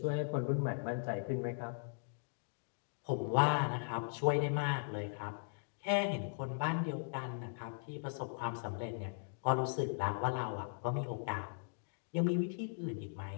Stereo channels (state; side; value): silent; right; digital silence